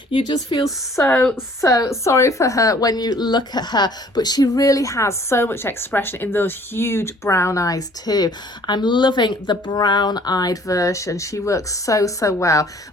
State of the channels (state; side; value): normal; both; correlation 0.55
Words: You just feel so sorry for her when you look at her, but she really has so much expression in those huge brown eyes too. I'm loving the brown-eyed version. She works so well.